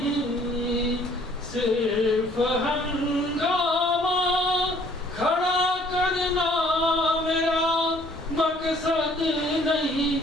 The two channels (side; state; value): both; normal; correlation 0.59